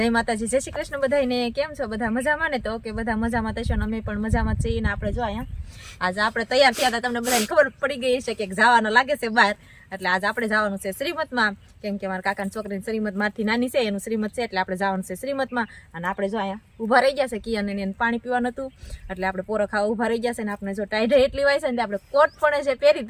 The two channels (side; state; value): both; identical; correlation 1.00